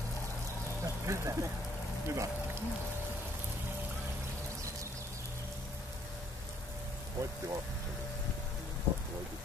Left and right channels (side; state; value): both; normal; correlation 0.65